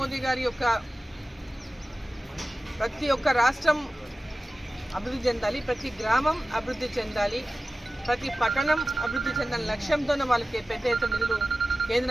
గారి యొక్క ప్రతి ఒక్క రాష్ట్రం అభివృద్ధి చెందాలి, ప్రతి గ్రామం అభివృద్ధి చెందాలి, ప్రతి పట్టణం అభివృద్ధి చెందాలని లక్ష్యంతోనే వాళ్ళకి పెద్ద ఎత్తున నిధులు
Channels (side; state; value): both; normal; correlation 0.96